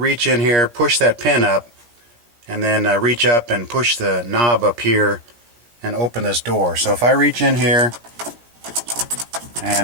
in here, push that pin up, and then reach up and push the knob up here and open this door. So if I reach in here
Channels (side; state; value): left; late; 17 ms